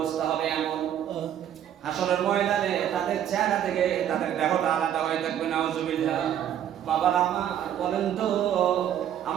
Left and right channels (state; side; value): quieter; left; 10.3 dB